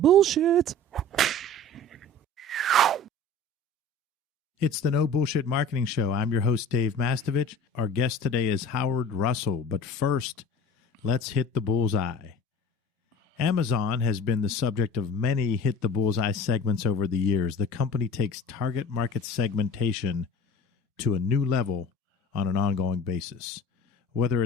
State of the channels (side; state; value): both; normal; correlation 0.41